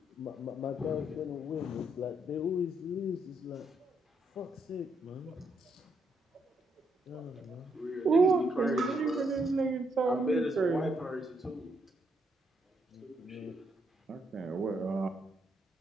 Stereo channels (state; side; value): normal; both; correlation 0.76